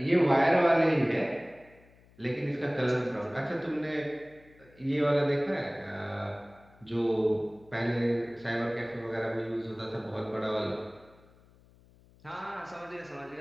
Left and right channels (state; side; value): noise; left; hum, 27 dB below the sound